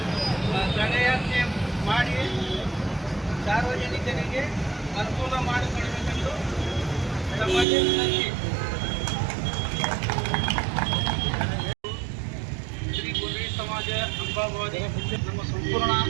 ದಂಡಯಾತ್ರೆ ಮಾಡಿ ಸಾರ್ವಜನಿಕರಿಗೆ ಅನುಕೂಲ ಮಾಡಿಕೊಡಬೇಕೆಂದು ತಮ್ಮಲ್ಲಿ ವಿನಂತಿ. ಶ್ರೀ ಗುರುವಿ ಸಮಾಜ ಅಂಬಾಭವಾನಿ ನಮ್ಮ ಸಂಪೂರ್ಣ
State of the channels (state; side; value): drops out; left; at 7.7 s